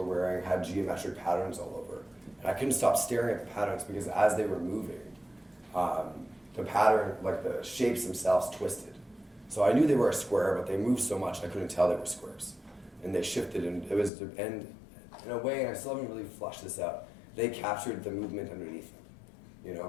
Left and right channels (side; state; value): right; drops out; at 14.1 s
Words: wearing had geometric patterns all over, and I couldn't stop staring at the patterns because as they were moving, the pattern, like the shapes themselves twisted. So I knew they were a square, but they moved so much I couldn't tell they were squares. And they shifted, and it was, and in a way, and I still haven't really flushed this out, they captured the movement underneath